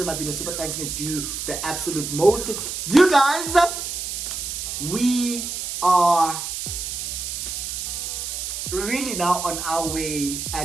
my video. Super thanks, me do the absolute most. You guys, we are really now on our way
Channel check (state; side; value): noise; right; hiss, 5 dB below the sound